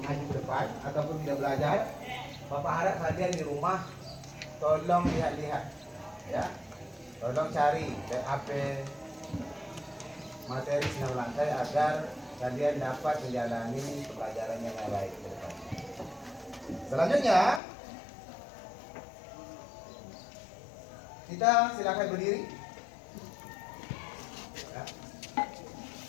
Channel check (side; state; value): right; drops out; at 17.6 s